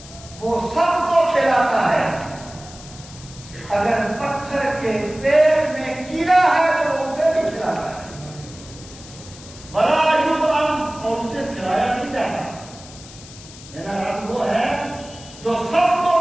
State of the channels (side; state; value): left; noise; hiss, 18 dB below the sound